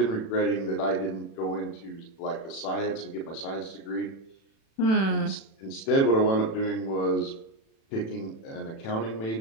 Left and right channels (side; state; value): right; late; 36 ms